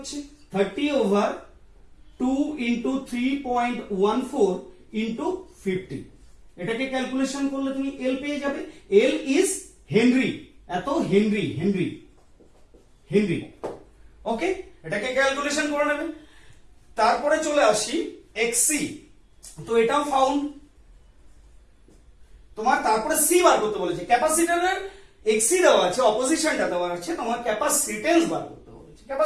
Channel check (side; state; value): both; identical; correlation 1.00